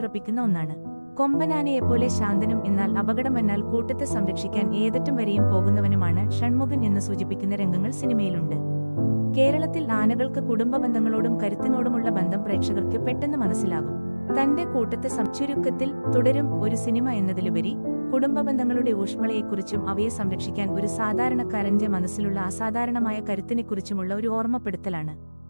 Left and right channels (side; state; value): both; inverted; correlation -1.00